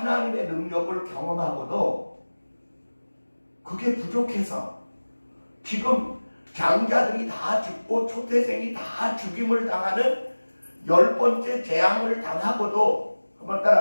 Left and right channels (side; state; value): both; inverted; correlation -1.00